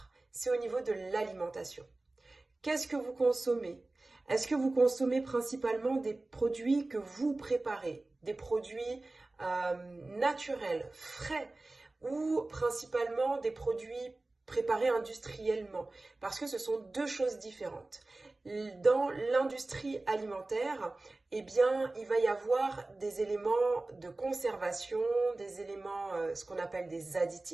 c'est au niveau de l'alimentation. Qu'est-ce que vous consommez? Est-ce que vous consommez principalement des produits que vous préparez, des produits naturels, frais, ou principalement des produits préparés industriellement? Parce que ce sont deux choses différentes. Dans l'industrie alimentaire, eh bien, il va y avoir des éléments de conservation, des éléments, ce qu'on appelle des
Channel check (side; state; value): left; quieter; 3.0 dB